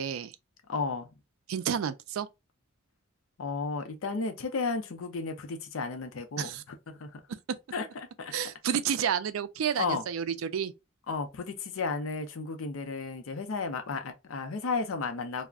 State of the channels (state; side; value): normal; both; correlation -0.10